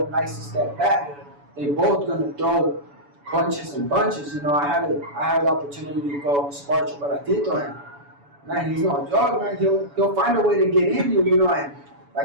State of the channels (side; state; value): left; late; 7.0 ms